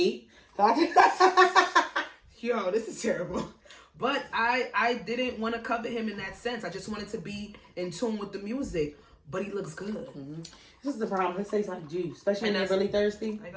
Yo, this is terrible. But I didn't want to covet him in that sense. I just wanted to be in tune with the music. But he looks good. This is the problem. It tastes like juice. Especially when they're really thirsty. Like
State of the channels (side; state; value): both; identical; correlation 1.00